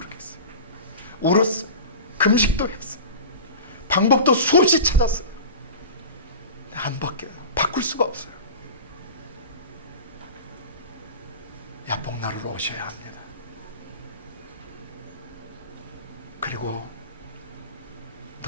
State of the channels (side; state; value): both; inverted; correlation -0.33